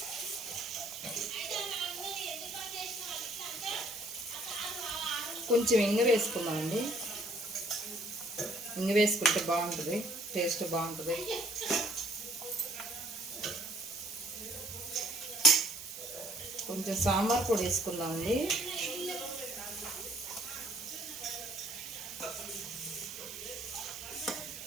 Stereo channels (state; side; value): noise; right; hiss, 11 dB below the sound